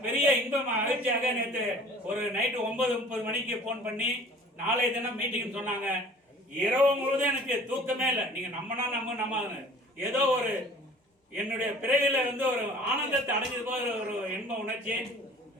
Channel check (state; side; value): normal; both; correlation 0.47